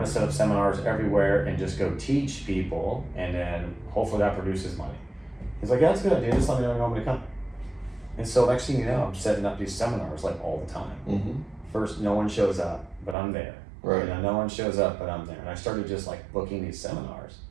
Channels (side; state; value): left; drops out; at 13.2 s